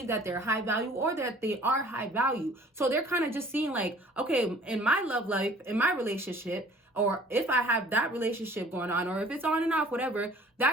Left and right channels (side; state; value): both; normal; correlation 0.52